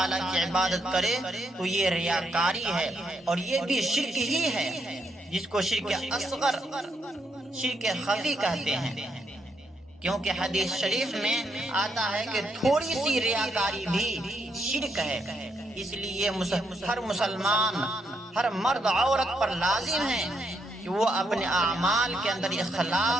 کی عبادت کرے تو یہ ریاکاری ہے، اور یہ بھی شرک ہی ہے. جس کو شرک اصغر، شرک خفی کہتے ہیں، کیونکہ حدیث شریف میں آتا ہے کہ تھوڑی سی ریاکاری بھی شرک ہے۔ اس لیے ہر مسلمان، ہر مرد عورت پر لازم ہے کہ وہ اپنے اعمال کے اندر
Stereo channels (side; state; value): both; normal; correlation 0.78